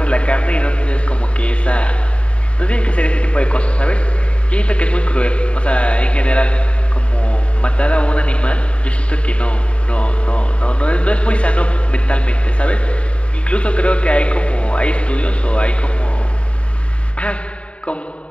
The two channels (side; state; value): right; late; 0.061 ms